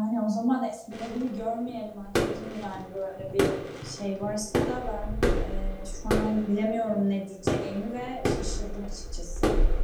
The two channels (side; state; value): both; identical; correlation 1.00